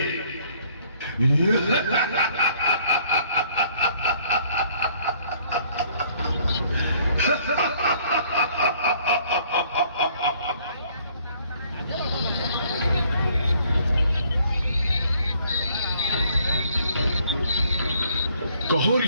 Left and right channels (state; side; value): inverted; both; correlation -0.62